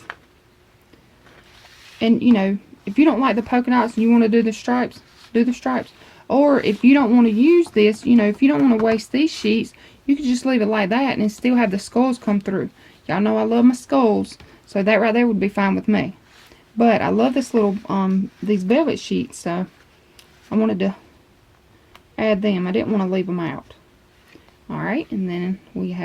And you know, if you don't like the polka dots and you want to do the stripes, do the stripes. Or if you don't want to use this, you know, if you don't want to waste these sheets, you can just leave it like that and still have the skulls come through. Y'all know I love my skulls, so that right there would be fine with me. But I love this little, these velvet sheets, so I wanted to add them. I didn't want to leave them out. Alright, and then we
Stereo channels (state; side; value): identical; both; correlation 1.00